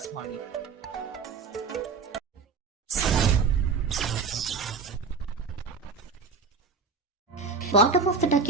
ಮಾಡಿ. ಬಾಟಮ್ ಆಫ್ ದ ಡಕ್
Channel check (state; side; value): quieter; left; 4.9 dB